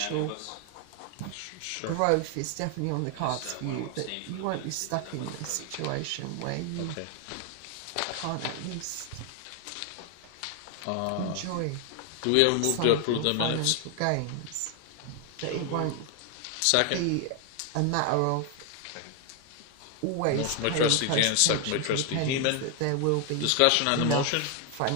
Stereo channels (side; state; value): both; different; correlation 0.01